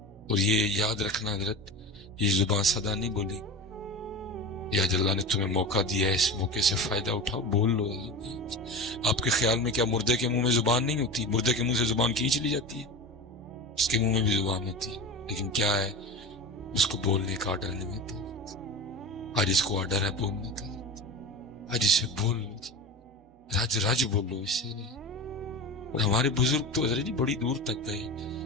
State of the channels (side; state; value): both; normal; correlation 0.29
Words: اور یہ یاد رکھنا حضرت یہ زبان صدا نہیں بولی، یا اللہ نے تمہیں موقع دیا ہے اس موقع سے فائدہ اٹھاؤ بول لو۔ آپ کے خیال میں کیا مردے کے منہ میں زبان نہیں ہوتی؟ مردے کے منہ سے زبان کھینچ لی جاتی ہے، اس کے منہ میں بھی زبان ہوتی ہے، لیکن کیا ہے اس کو بولنے کا آرڈر نہیں ملتا، آج اس کو آرڈر ہے بولنے کا، آج اسے بول رج رج بولو اس سے۔ اور ہمارے بزرگ تو حضرت جی بڑی دور تک گئے،